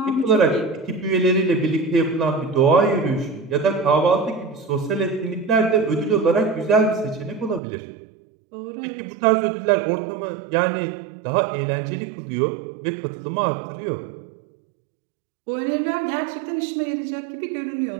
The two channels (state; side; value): drops out; left; at 7.6 s